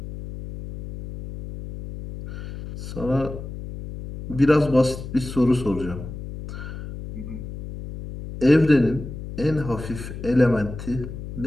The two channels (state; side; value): noise; left; hum, 10 dB below the sound